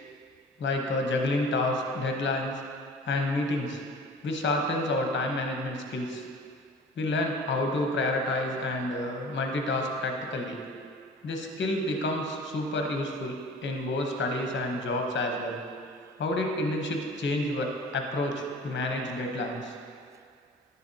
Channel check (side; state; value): both; normal; correlation 0.43